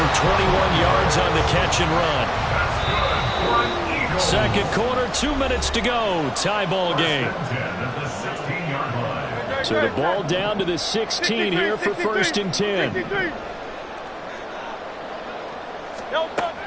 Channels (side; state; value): both; identical; correlation 1.00